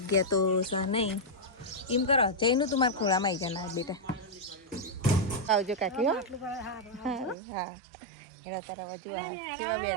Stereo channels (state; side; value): drops out; left; at 7.4 s